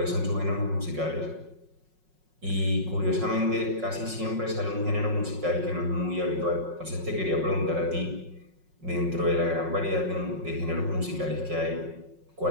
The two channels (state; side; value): late; left; 5.4 ms